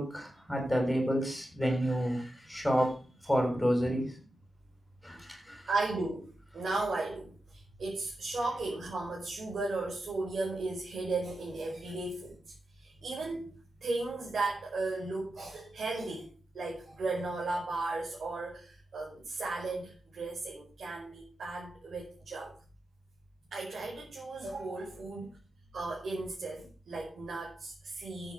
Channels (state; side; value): normal; both; correlation 0.90